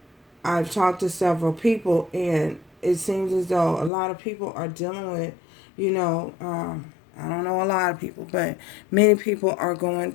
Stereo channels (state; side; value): drops out; right; at 3.9 s